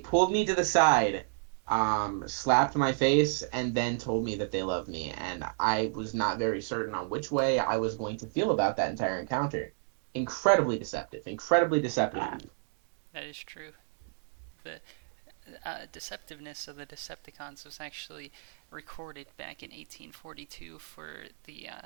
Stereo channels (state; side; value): silent; left; 57 dB below the other